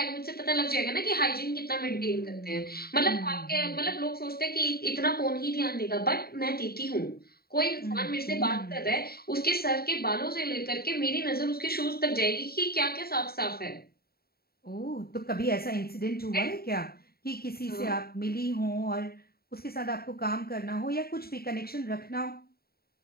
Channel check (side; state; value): right; late; 0.45 ms